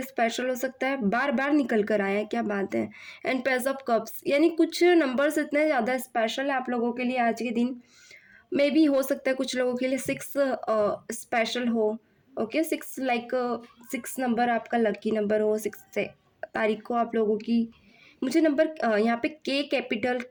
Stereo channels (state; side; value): identical; both; correlation 1.00